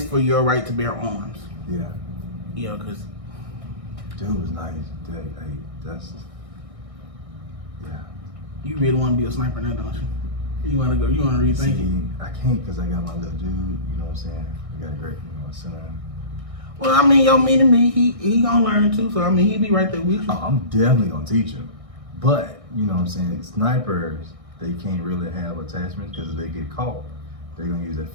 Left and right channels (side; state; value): left; late; 1.6 ms